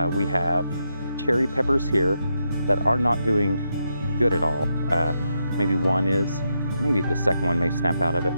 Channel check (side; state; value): both; inverted; correlation -0.83